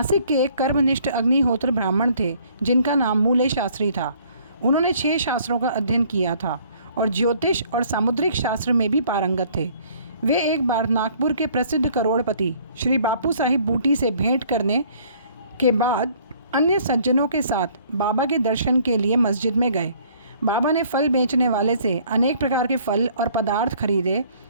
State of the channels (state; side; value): inverted; both; correlation -0.59